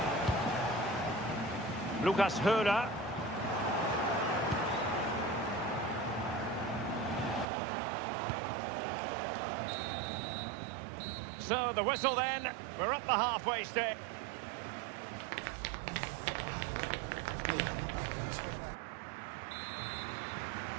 Lucas Höhler. So the whistle then, we're up the halfway stage.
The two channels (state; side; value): drops out; left; at 7.5 s